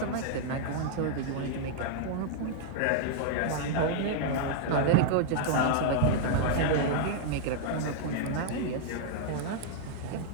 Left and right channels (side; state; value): both; different; correlation -0.01